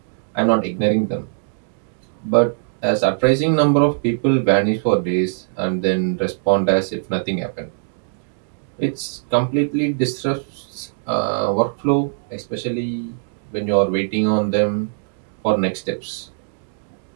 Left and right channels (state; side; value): silent; left; digital silence